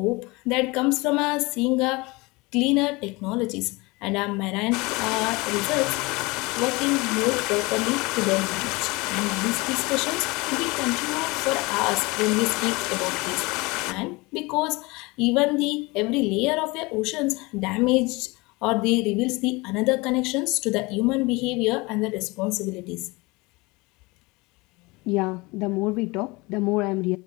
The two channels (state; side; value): quieter; right; 24.5 dB